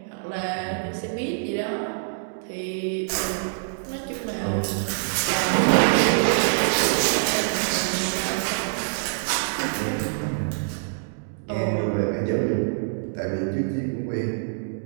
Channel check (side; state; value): left; silent; digital silence